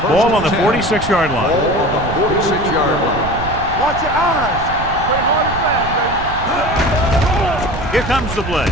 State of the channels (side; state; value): right; noise; rumble, 9 dB below the sound